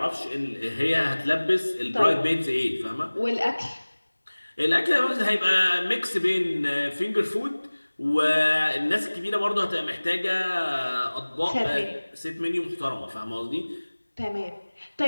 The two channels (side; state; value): both; inverted; correlation -1.00